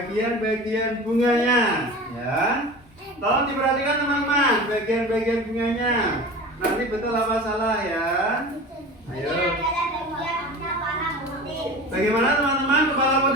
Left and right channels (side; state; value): both; normal; correlation 0.35